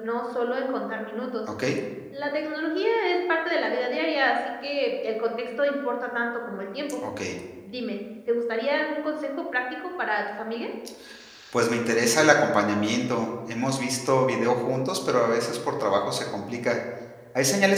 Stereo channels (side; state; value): both; identical; correlation 1.00